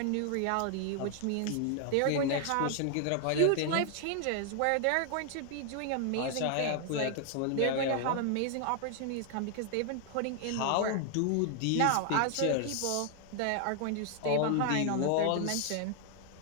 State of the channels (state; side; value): different; both; correlation 0.00